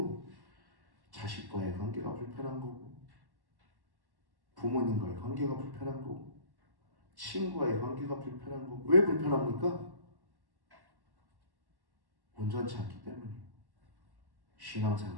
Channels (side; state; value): left; late; 1.1 ms